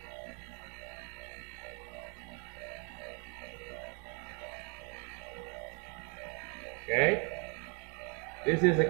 Okay? This is a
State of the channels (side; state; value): left; quieter; 35.8 dB